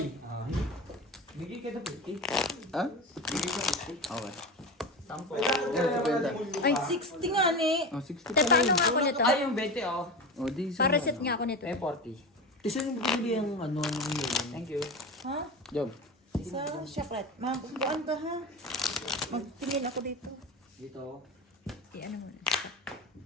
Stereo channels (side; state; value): both; normal; correlation 0.25